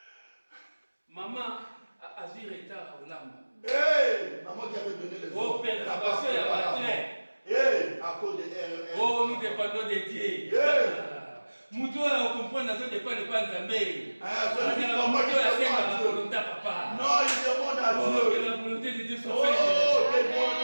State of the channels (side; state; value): both; inverted; correlation -1.00